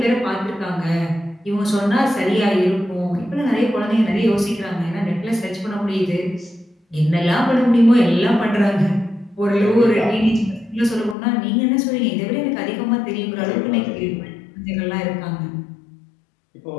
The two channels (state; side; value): drops out; right; at 11.2 s